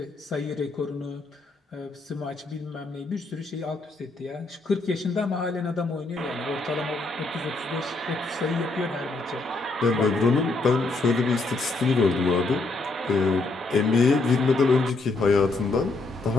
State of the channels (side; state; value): right; quieter; 3.4 dB